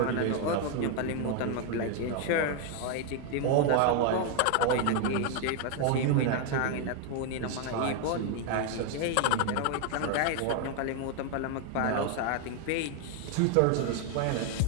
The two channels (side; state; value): both; different; correlation 0.01